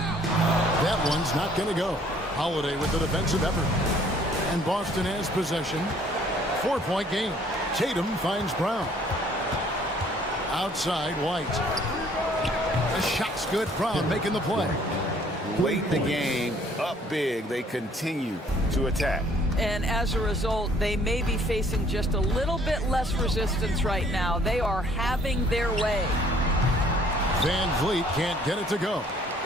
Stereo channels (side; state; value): both; normal; correlation 0.60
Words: That one's not going to go. Holiday with the defensive effort. And Boston has possession. 4-point game. Tatum finds Brown. Outside, White. The shot's good. Brown making the play. Late in the game, up big, they continue to attack. And as a result, they may be facing just a little bit less resistance right now. They are having their way. Van Vliet can't get it to go.